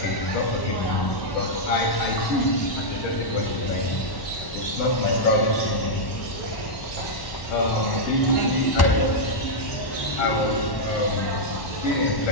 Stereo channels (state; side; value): late; right; 1.1 ms